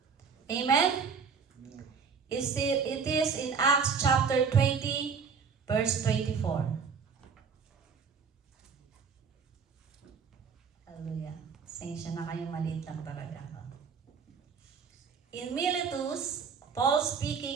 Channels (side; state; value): left; quieter; 5.9 dB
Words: Amen? It is in Acts chapter 20, verse 24. Hallelujah. Sensya na kayo, maliit lang talaga ako. In Miletus, Paul